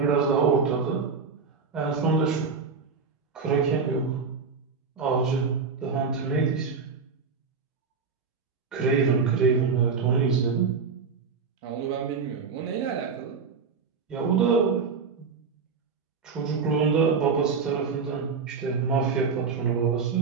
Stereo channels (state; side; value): quieter; left; 5.3 dB